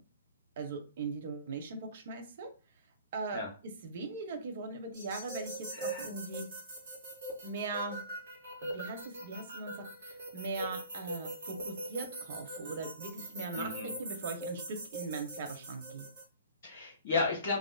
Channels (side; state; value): both; inverted; correlation -0.47